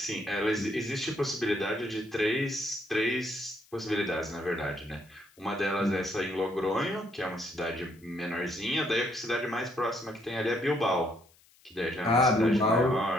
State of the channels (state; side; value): noise; left; hiss, 30 dB below the sound